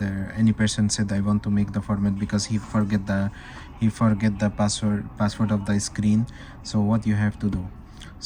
said I want to make the format because he forget the password of the screen. So what you have to do,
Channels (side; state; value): both; identical; correlation 1.00